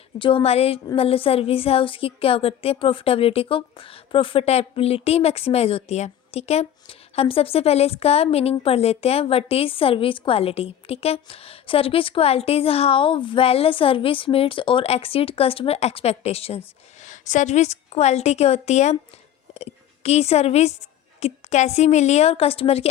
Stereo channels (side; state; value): right; quieter; 10.5 dB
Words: जो हमारे मतलब सर्विस है उसकी क्या करती है, प्रॉफिटेबिलिटी मैक्सिमाइज होती है। ठीक है, हम सबसे पहले इसका मीनिंग पढ़ लेते हैं। What is service quality. ठीक है, service quality is how well service meets और exceed customer expectations. Service quality क्या होती है कि सर्विस कैसी मिली है और कस्टमर की